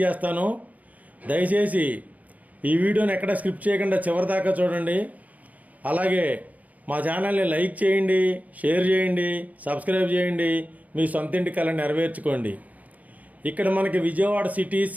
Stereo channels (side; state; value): left; late; 0.075 ms